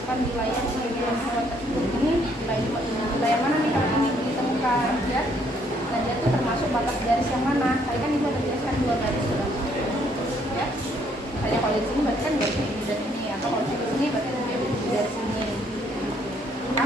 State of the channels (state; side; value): normal; both; correlation 0.67